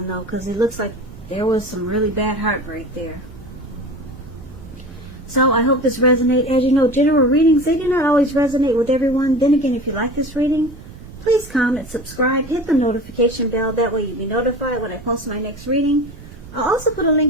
though, because it looks like there was some really bad heartbreak there. So I hope this resonates. As you know, general readings, they do not always resonate with everyone. Then again, if you like this reading, please comment, subscribe, hit the notification bell. That way you'll be notified when I post my next reading. I'll also put a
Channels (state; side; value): noise; right; rumble, 16 dB below the sound